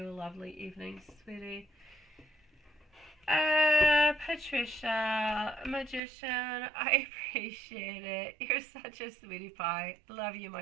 a lovely evening, sweetie. Patricia, Magician, I appreciate it. You're such a sweetie pie. Love you,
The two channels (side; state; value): left; drops out; at 6.0 s